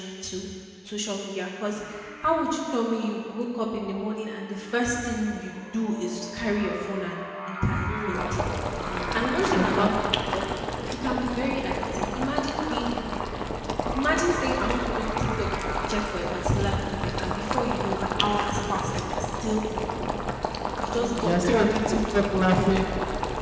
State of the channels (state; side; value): identical; both; correlation 1.00